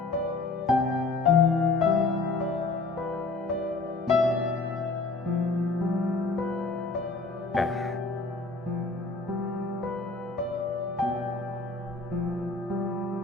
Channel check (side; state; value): right; quieter; 3.7 dB